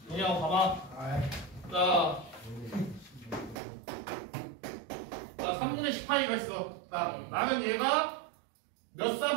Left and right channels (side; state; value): left; drops out; at 3.6 s